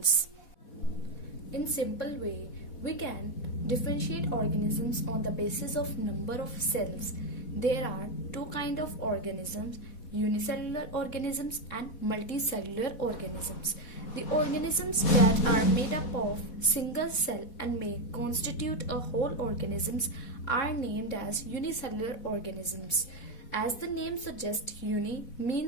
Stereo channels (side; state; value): right; late; 4.2 ms